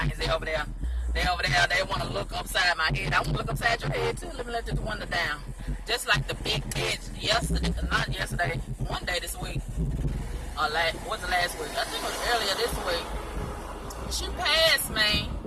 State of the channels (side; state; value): both; identical; correlation 1.00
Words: They over there. They want to look upside my head. I want to look upside your head too. Let me let this window down. Just like the big bitch not yesterday, one day this week. What's the last week? I think it was earlier this week. She passed me.